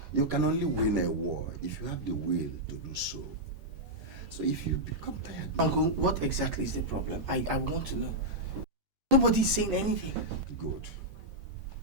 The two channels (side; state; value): left; late; 11 ms